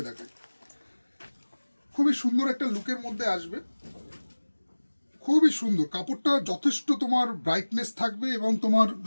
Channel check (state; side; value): inverted; both; correlation -1.00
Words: দেখাই। খুবই সুন্দর একটা লুকের মধ্যে আসবে, খুবই সুন্দর কাপড়টা, যথেষ্ট তোমার ব্রাইটনেস থাকবে এবং তোমার